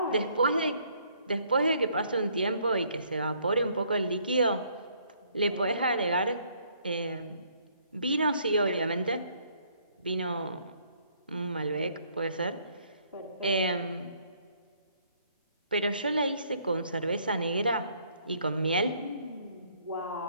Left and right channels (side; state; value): both; inverted; correlation -0.65